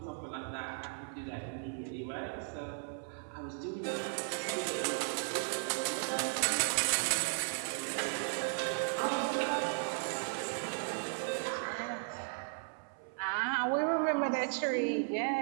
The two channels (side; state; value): left; silent; 54 dB below the other